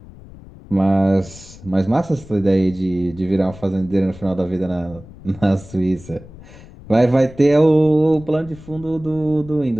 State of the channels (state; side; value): noise; left; rumble, 19 dB below the sound